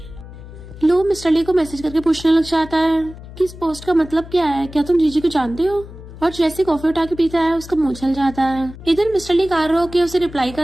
लू मिस्टर ली को मैसेज करके पूछने लग जाता है कि इस पोस्ट का मतलब क्या है, क्या तुम जीजी को जानते हो? और जैसे कॉफी उठा के पीता है उसका मुंह जल जाता है। इधर मिस्टर ली कार रोक के उसे रिप्लाई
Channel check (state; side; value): noise; left; hum, 15 dB below the sound